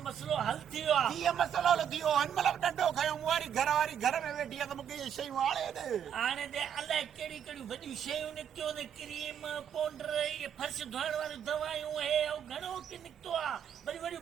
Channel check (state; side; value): quieter; left; 8.7 dB